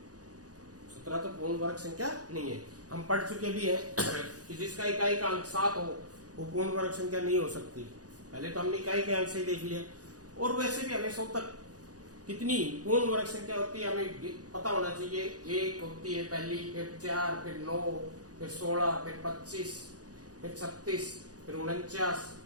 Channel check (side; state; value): left; late; 0.68 ms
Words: 17 तो पूर्ण वर्ग संख्या नहीं है। हम पढ़ चुके भी हैं कि जिसका इकाई का अंक 7 हो वो पूर्ण वर्ग संख्या नहीं हो सकती। पहले तो हमने इकाई के अंक से ही देख लिया। और वैसे भी हमें 100 तक कितनी पूर्ण वर्ग संख्या होती है हमें पता होना चाहिए। 1 होती है पहली, फिर 4, फिर 9, फिर 16, फिर 25, फिर 36, फिर 49,